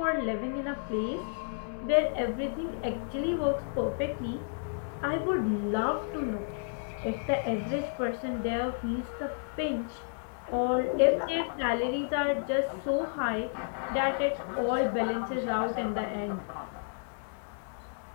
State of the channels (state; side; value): silent; right; digital silence